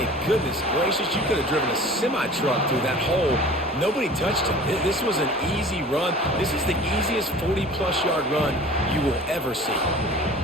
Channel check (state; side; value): normal; both; correlation 0.43